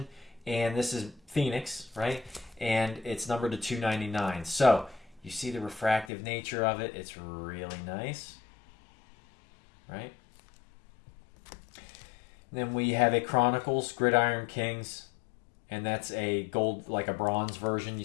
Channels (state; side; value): drops out; right; at 6.1 s